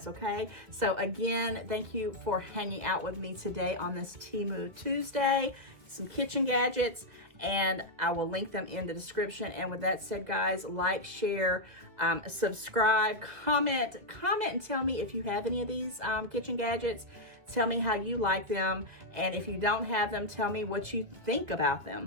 okay? So again, thank you for hanging out with me today on this Temu Tuesday, some kitchen gadgets, and I will link them in the description. And with that said, guys, like, share, subscribe, comment and tell me if you have any of these kitchen gadgets. Tell me how you like them, and if you don't have them, tell me what you think about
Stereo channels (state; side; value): late; left; 2.0 ms